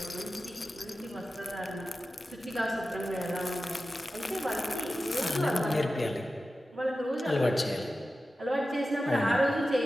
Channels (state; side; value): normal; both; correlation 0.94